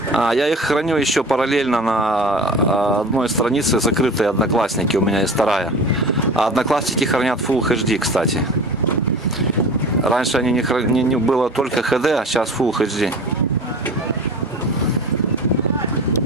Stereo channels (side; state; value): both; normal; correlation 0.37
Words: Я их храню еще параллельно на одной странице, закрытые Одноклассники, у меня есть вторая. А Одноклассники хранят Full HD, кстати. Раньше они не было только HD, а сейчас Full HD.